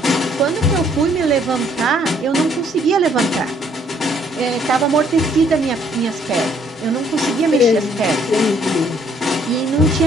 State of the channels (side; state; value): both; normal; correlation 0.65